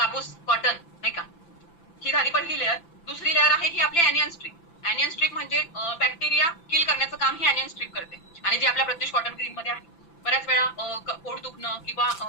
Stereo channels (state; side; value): late; right; 5.9 ms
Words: कॉटन नाही का. ही झाली पहिली लेअर. दुसरी लेअर आहे ही आपली ॲनियन स्ट्रीप. ॲनियन स्ट्रीप म्हणजे बॅक्टेरिया किल करण्याचं काम ही ॲनियन स्ट्रीप करते. आणि जी आपल्या प्रत्युष कॉटन ग्रीन मध्ये आहे. बऱ्याच वेळा पोट दुखणं किंवा